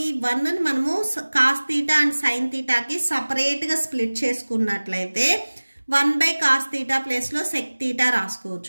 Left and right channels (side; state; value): both; inverted; correlation -1.00